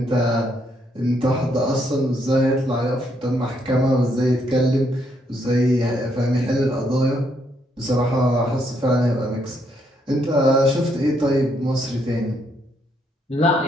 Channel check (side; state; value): both; normal; correlation 0.73